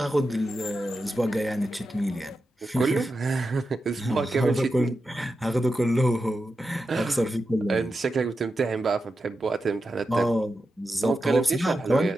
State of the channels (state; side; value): normal; both; correlation 0.90